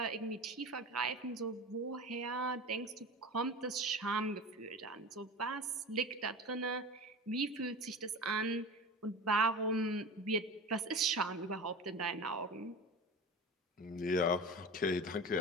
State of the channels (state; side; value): normal; both; correlation 0.31